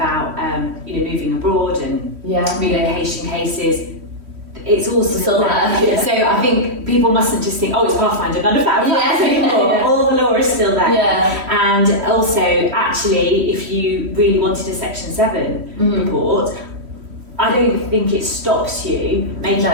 moving abroad and relocation cases, it's all still there. So I think people mustn't just think, it's Pathfinder, none of that applies anymore. All the law is still there. And also, actually, if you really wanted a Section 7 report, I don't think it stops you making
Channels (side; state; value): left; late; 3.1 ms